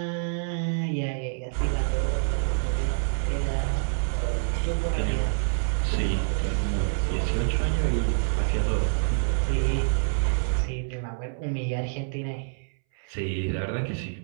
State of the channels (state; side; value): silent; left; 60 dB below the other